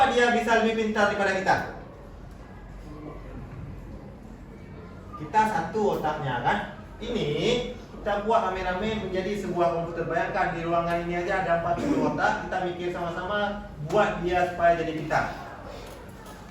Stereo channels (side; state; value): both; identical; correlation 1.00